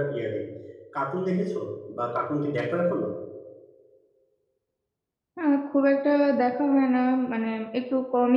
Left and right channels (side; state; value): both; identical; correlation 1.00